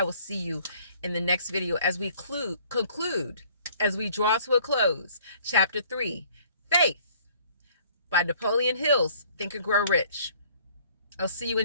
will see you in the next video as we conclude, as we draw to a close, Chapter 3, Faith, by Napoleon Hill's Think and Grow Rich. I'll see you in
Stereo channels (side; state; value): both; inverted; correlation -0.57